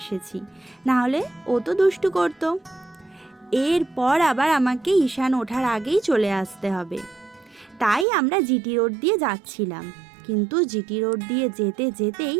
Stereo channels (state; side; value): drops out; left; at 8.1 s